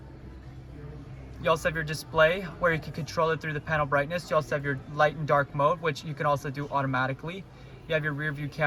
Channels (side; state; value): both; identical; correlation 1.00